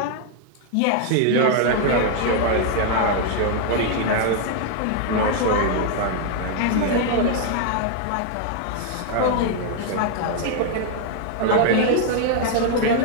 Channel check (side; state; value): both; different; correlation 0.00